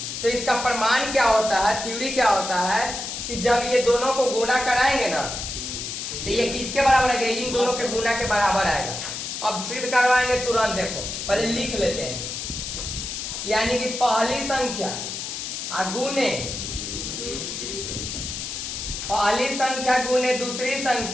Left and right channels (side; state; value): left; noise; hiss, 5 dB below the sound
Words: तो इसका प्रमाण क्या होता है, थ्योरी क्या होता है कि जब ये दोनों को गुना कराएंगे ना तो ये किसके बराबर आएगा, इन दोनों के गुना के बराबर आएगा। अब सिद्ध करवाएंगे तुरंत, देखो पहले लिख लेते हैं। यानी कि पहली संख्या गुने, पहली संख्या गुने दूसरी